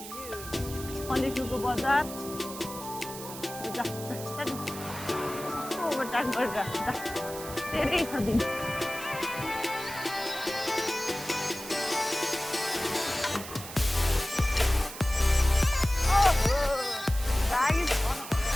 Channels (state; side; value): noise; right; hiss, 11 dB below the sound